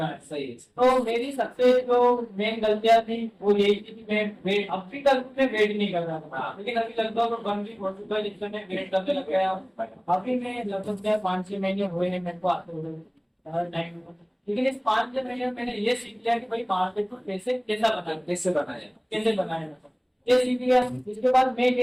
है। सही है। तो मेरी सबसे जो मेन गलतियां थी वो यही थी कि मैं वेट अब भी कल में वेट नहीं कर रहा था, लेकिन अभी लगभग 1 वीक हो चुका है जिससे मैं वेट करने लग गया। अभी मैं लगभग 5-6 महीने हुए हैं मेरे को आते हुए हर टाइम, लेकिन इस 5-6 महीने में मैंने ये सीख लिया कि भाई मार्केट में पैसे कैसे बनाए ये सीख लिया। इसके बाद मैं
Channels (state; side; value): identical; both; correlation 1.00